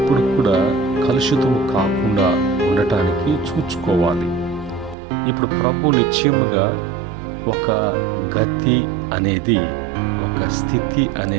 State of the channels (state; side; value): drops out; left; at 5.0 s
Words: కూడా కలుషితం కాకుండా ఉండటానికి చూసుకోవాలి. ఇప్పుడు ప్రభు నిశ్చయముగా ఒక గతి అనేది, ఒక స్థితి